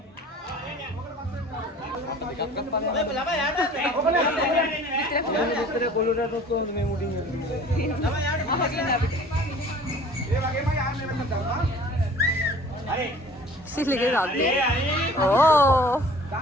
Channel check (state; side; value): normal; both; correlation 0.48